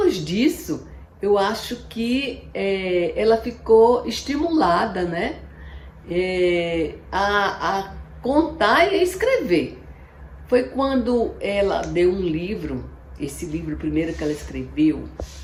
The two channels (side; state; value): both; identical; correlation 1.00